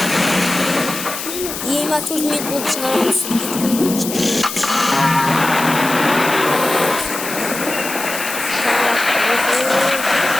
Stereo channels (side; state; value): left; noise; hiss, 7 dB below the sound